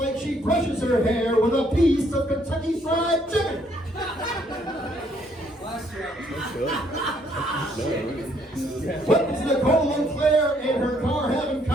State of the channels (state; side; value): normal; both; correlation 0.68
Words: she brushes her hair with a piece of Kentucky Fried Chicken. What does Nicole Leclerc and her car have in